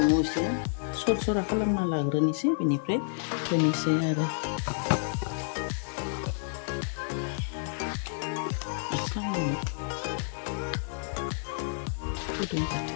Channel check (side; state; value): right; silent; digital silence